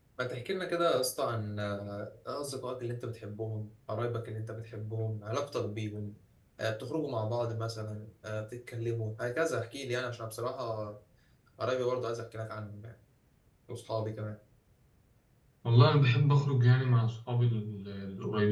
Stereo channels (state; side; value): identical; both; correlation 1.00